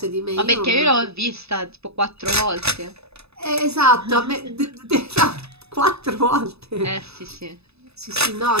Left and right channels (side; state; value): left; late; 0.79 ms